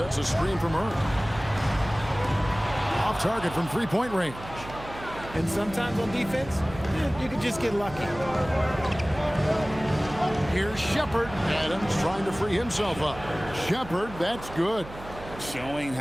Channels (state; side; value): noise; right; hum, 14 dB below the sound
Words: a screen for Murray. Off target from 3-point range. And sometimes on defense, you can just get lucky. Here's Shepherd. Adams trying to free himself up. Shepherd, that's good. Showing